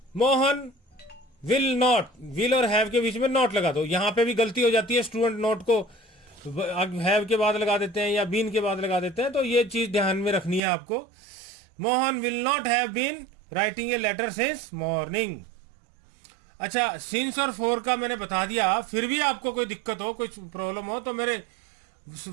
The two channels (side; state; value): left; drops out; at 10.6 s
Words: मोहन विल नॉट, विल और हैव के बीच में नॉट लगा दो। यहां पे भी गलती हो जाती है, स्टूडेंट नॉट को हैव के बाद लगा देते हैं या बीन के बाद लगा देते हैं, तो ये चीज ध्यान में रखनी है आपको। Mohan will not have been writing a letter since morning. अच्छा, सिंस और फॉर का मैंने बता दिया, फिर भी आपको कोई दिक्कत हो, कोई प्रॉब्लम हो तो मेरे